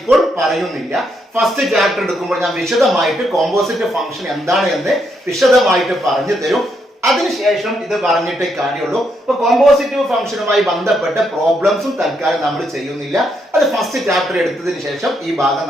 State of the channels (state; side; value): normal; both; correlation 0.77